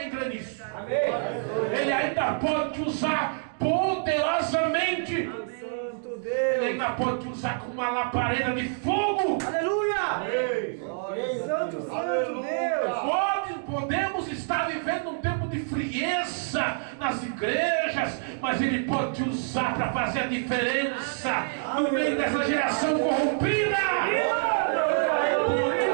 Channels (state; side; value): silent; left; digital silence